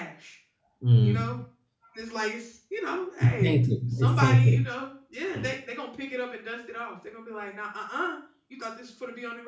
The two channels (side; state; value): both; identical; correlation 1.00